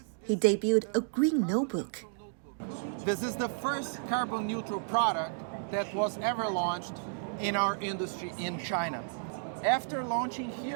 he debuted a green notebook. This is the first carbon-neutral product that was ever launched in our industry in China. After launching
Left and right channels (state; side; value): silent; left; digital silence